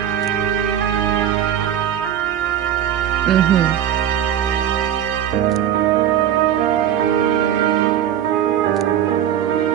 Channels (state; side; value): quieter; left; 10.3 dB